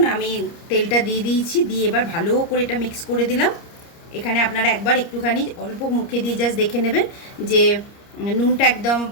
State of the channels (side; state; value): right; late; 30 ms